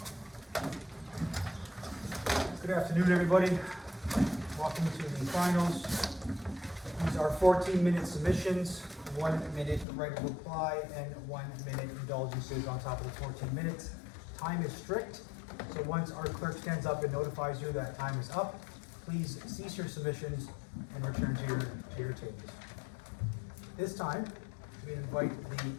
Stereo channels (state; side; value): drops out; right; at 9.9 s